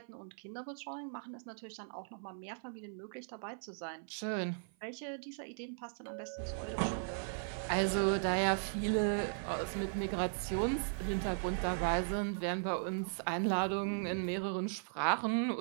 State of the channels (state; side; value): silent; left; 53 dB below the other